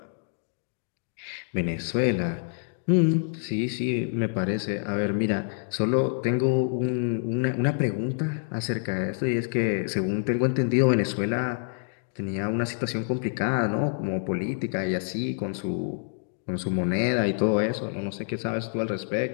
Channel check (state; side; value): silent; right; digital silence